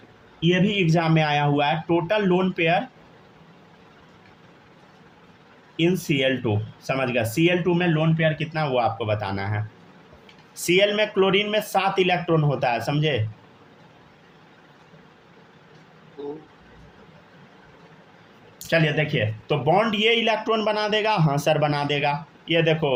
ये भी एग्जाम में आया हुआ है, टोटल लोन पेयर इन Cl2, समझ गया। Cl2 में लोन पेयर कितना वो आपको बताना है। Cl में, क्लोरीन में 7 इलेक्ट्रॉन होता है, समझे। चलिए देखिए, तो बॉन्ड ये इलेक्ट्रॉन बना देगा, हाँ सर बना देगा। ये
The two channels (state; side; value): identical; both; correlation 1.00